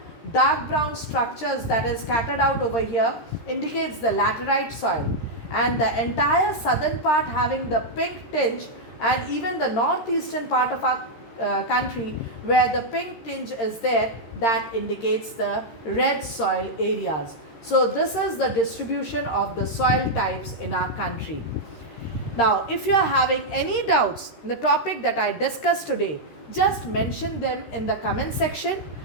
dark brown structures that is scattered out over here indicates the laterite soil, and the entire southern part having the pink tinge, and even the northeastern part of our country where the pink tinge is there, that indicates the red soil areas. So this is the distribution of the soil types in our country. Now if you are having any doubts in the topic that I discussed today, just mention them in the comment section,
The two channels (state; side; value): late; right; 13 ms